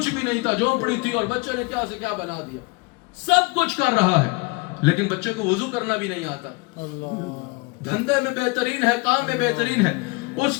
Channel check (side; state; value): right; quieter; 26.8 dB